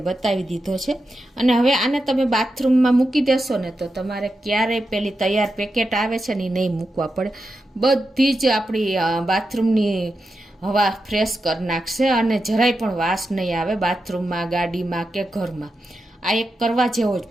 બતાવી દીધો છે. અને હવે આને તમે બાથરૂમમાં મૂકી દેશો ને તો તમારે ક્યારેય પેલી તૈયાર પેકેટ આવે છે ને એ નહીં મૂકવા પડે. બધી જ આપણી બાથરૂમની હવા ફ્રેશ કરી નાખશે અને જરાય પણ વાસ નહીં આવે બાથરૂમમાં, ગાડીમાં કે ઘરમાં. આ એક કરવા જેવો જ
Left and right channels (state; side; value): normal; both; correlation 0.88